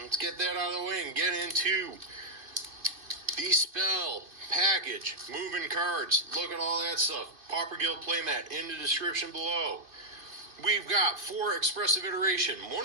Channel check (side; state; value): left; late; 2.3 ms